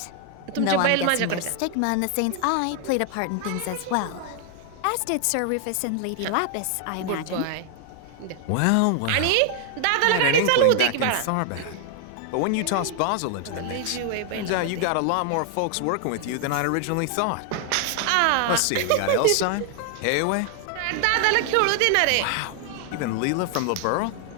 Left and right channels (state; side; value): different; both; correlation 0.00